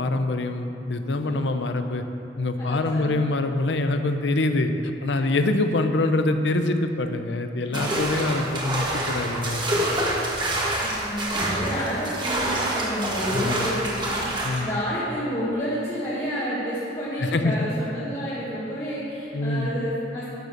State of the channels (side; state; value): both; normal; correlation 0.47